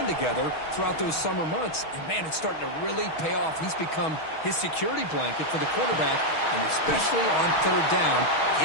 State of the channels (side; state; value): right; late; 6.3 ms